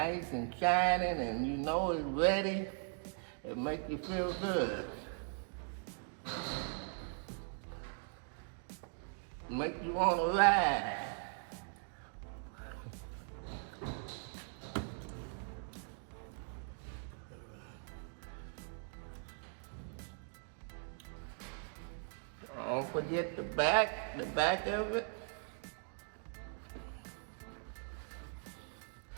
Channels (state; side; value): silent; left; 51 dB below the other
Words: and shining and you know it's ready, it makes you feel good. It makes you want to ride. Don't forget the back of it.